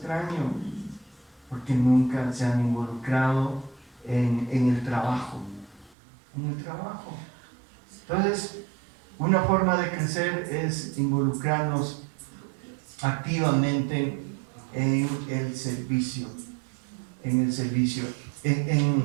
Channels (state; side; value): drops out; left; at 6.0 s